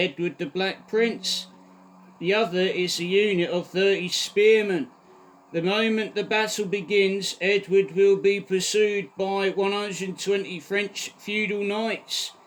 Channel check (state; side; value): identical; both; correlation 1.00